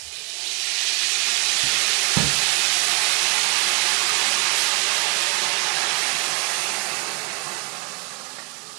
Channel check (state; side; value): quieter; left; 27.4 dB